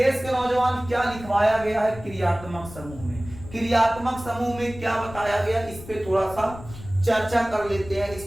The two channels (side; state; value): left; noise; rumble, 15 dB below the sound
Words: के नौजवान क्या लिखवाया गया है क्रियात्मक समूह में, क्रियात्मक समूह में क्या बताया गया, इस पे थोड़ा सा चर्चा कर लेते हैं, इस